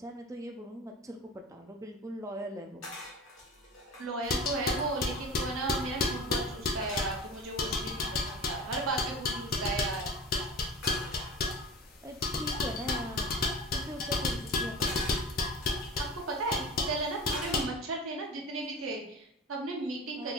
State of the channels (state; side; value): normal; both; correlation 0.33